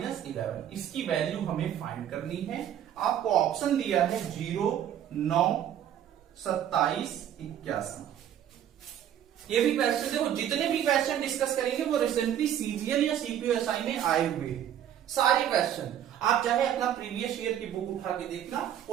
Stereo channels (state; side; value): quieter; left; 10.4 dB